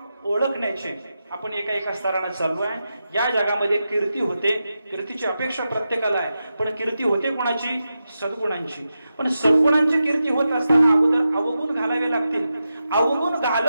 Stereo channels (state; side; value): inverted; both; correlation -0.90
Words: ओळखण्याचे. आपण एका स्तराने चालू आहे. या जगामध्ये कीर्ती होते, कीर्तीची अपेक्षा प्रत्येकाला आहे, पण कीर्ती होते कोणाची? सद्गुणांची. पण सद्गुणांची कीर्ती होत असताना अगोदर अवगुण घालावे लागतील. अवगुण